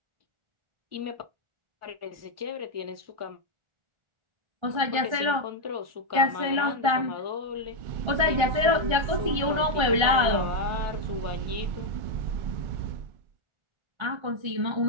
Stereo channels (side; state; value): left; late; 1.3 ms